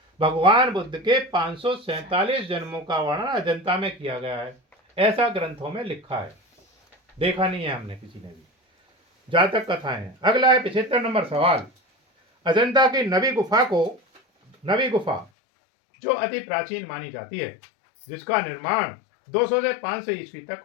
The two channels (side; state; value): right; drops out; at 15.3 s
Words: भगवान बुद्ध के 547 जन्मों का वर्णन अजंता में किया गया है, ऐसा ग्रंथों में लिखा है, देखा नहीं है हमने किसी ने भी। जातक कथाएं। अगला है 75 नंबर सवाल, अजंता की नवी गुफा जो अति प्राचीन मानी जाती है, जिसका निर्माण 200 से 500 ईस्वी तक